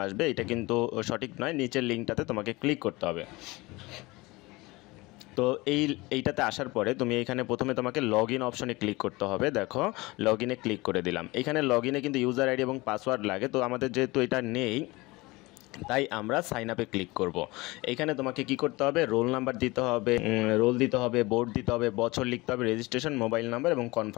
আসবে। এটা কিন্তু সঠিক নয়, নিচের লিঙ্কটাতে তোমাকে ক্লিক করতে হবে। তো এইটাতে আসার পরে তুমি এখানে প্রথমে তোমাকে লগ ইন অপশনে ক্লিক করতে হবে। দেখো লগ ইনে ক্লিক করে দিলাম। এখানে লগ ইনে কিন্তু ইউজার আইডি এবং পাসওয়ার্ড লাগে, তো আমাদের যেহেতু এটা নেই তাই আমরা সাইন আপে ক্লিক করব। এখানে তোমাকে কি করতে হবে, রোল নাম্বার দিতে হবে, রোল দিতে হবে, বোর্ড দিতে হবে, বছর লিখতে হবে, রেজিস্ট্রেশন মোবাইল নাম্বার এবং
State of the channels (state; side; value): quieter; right; 22.4 dB